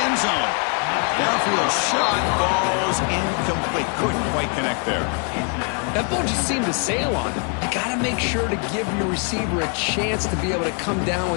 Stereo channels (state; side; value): quieter; right; 39.3 dB